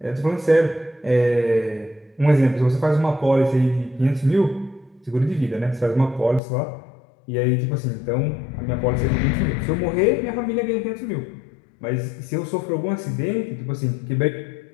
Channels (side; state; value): right; drops out; at 6.4 s